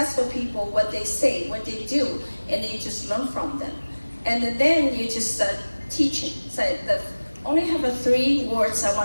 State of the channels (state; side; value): inverted; both; correlation -1.00